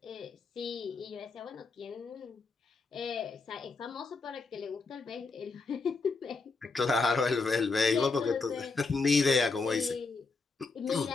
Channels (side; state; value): right; quieter; 4.1 dB